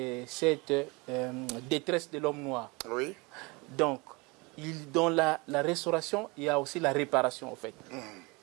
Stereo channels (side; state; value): left; quieter; 26.6 dB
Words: cette détresse de l'homme noir. Oui. Donc, dans la restauration, il y a aussi la réparation en fait.